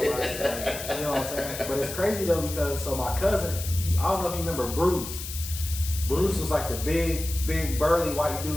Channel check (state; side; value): noise; left; hiss, 8 dB below the sound